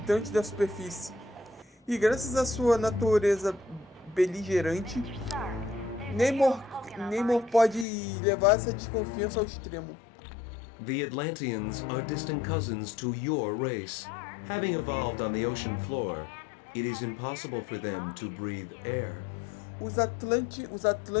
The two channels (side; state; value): right; drops out; at 7.9 s